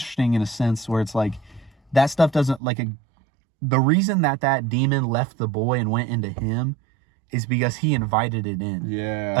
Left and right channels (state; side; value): drops out; left; at 2.6 s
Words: in a sense where it's like that stuff doesn't the reason that demon left the boy and went into him is because he invited it in. Yeah,